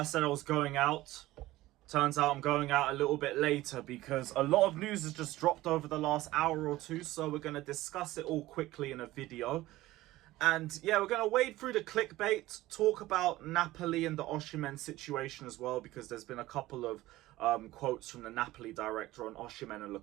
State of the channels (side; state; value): left; quieter; 17.1 dB